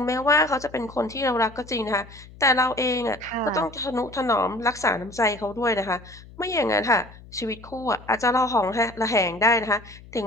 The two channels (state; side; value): noise; left; hum, 20 dB below the sound